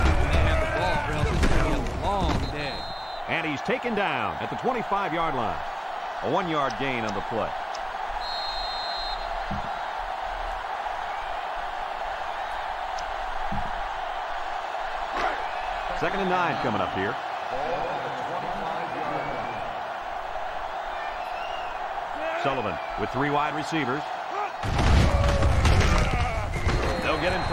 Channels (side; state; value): both; identical; correlation 1.00